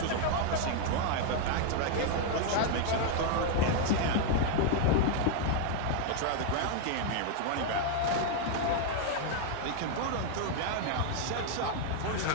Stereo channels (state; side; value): different; both; correlation 0.00